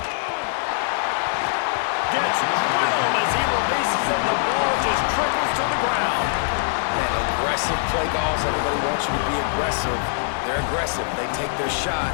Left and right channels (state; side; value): silent; right; digital silence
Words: Gets drilled as he releases it. The ball just trickles to the ground. Man, aggressive play calls. Everybody wants you to be aggressive. They're aggressive. They take their shot.